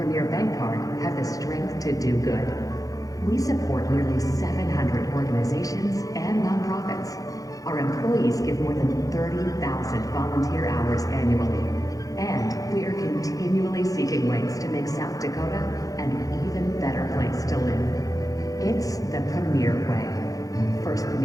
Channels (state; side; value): late; right; 0.17 ms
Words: Bank Card have the strength to do good. We support nearly 700 organizations and nonprofits. Our employees give more than 30,000 volunteer hours annually. And we are continually seeking ways to make South Dakota an even better place to live. It's the Premier way. First